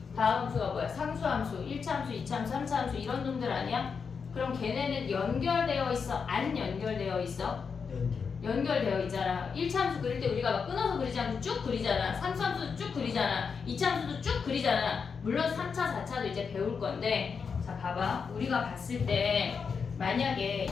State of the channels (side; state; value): right; quieter; 5.8 dB